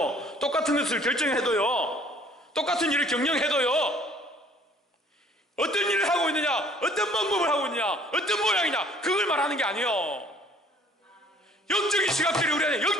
똑같은 것을 결정해도요, 똑같은 일을 경영해도요, 어떤 일을 하고 있느냐, 어떤 방법을 하고 있느냐, 어떤 모양이냐, 그걸 말하는 게 아니에요. 영적인 시각들이 우리 안에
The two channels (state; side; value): normal; both; correlation 0.55